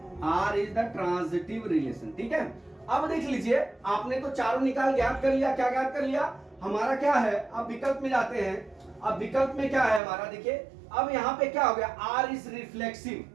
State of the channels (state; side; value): drops out; left; at 10.0 s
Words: R is the transitive relation. ठीक है, अब देख लीजिए आपने तो चारों निकाल ज्ञात कर लिया। क्या ज्ञात कर लिया, हमारा क्या है, अब विकल्प में जाते हैं। अब विकल्प में क्या है हमारा, देखिए अब यहां पे क्या हो गया, आर इज रिफ्लेक्सिव